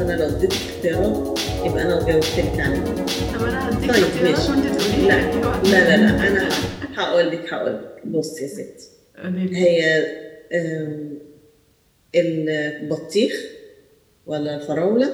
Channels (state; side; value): identical; both; correlation 1.00